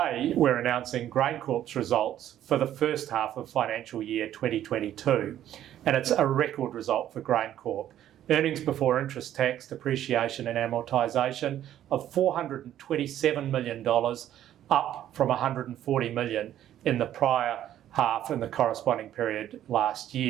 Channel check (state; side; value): quieter; left; 11.7 dB